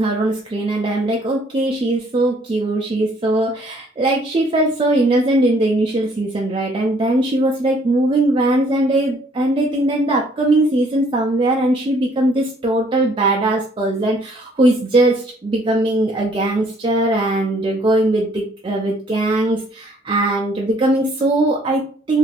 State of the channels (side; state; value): both; normal; correlation 0.62